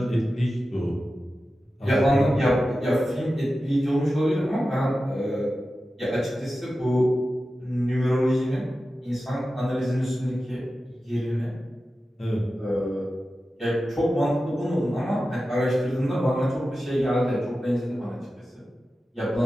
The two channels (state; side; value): normal; both; correlation 0.93